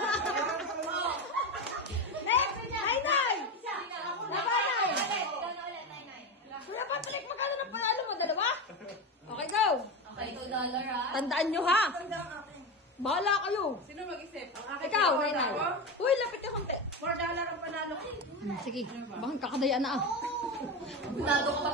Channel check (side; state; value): both; normal; correlation 0.18